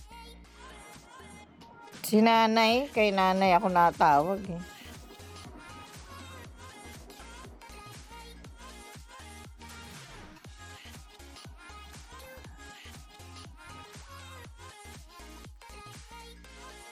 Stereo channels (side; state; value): both; identical; correlation 1.00